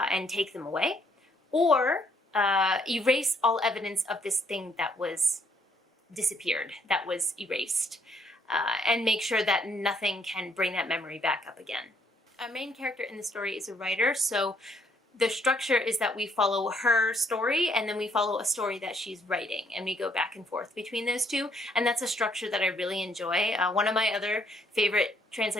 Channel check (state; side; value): normal; both; correlation 0.68